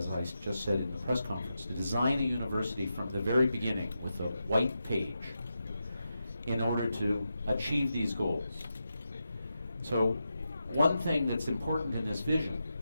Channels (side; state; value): both; inverted; correlation -0.88